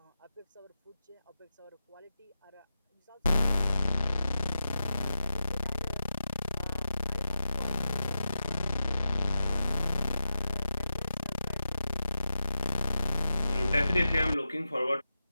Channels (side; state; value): both; inverted; correlation -0.92